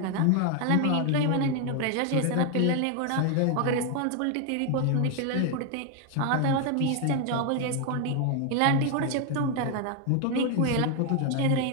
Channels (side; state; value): both; different; correlation 0.01